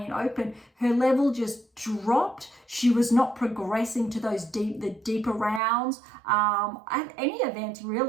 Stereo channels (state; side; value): drops out; left; at 5.6 s